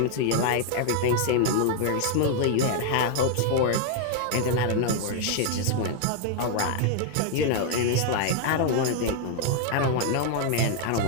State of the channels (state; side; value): different; both; correlation 0.00